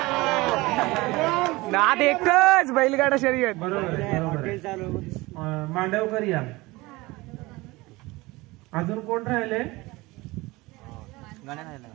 नाद एकच बैलगाडा शर्यत. बरोबर. मांडवकर या. अजून कोण राहिले?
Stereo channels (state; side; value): quieter; left; 21.6 dB